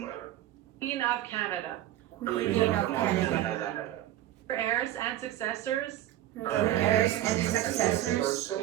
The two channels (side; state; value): left; quieter; 13.6 dB